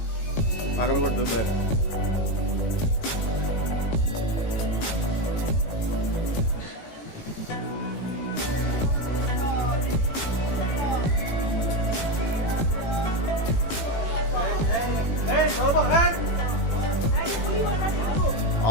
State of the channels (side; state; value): right; late; 18 ms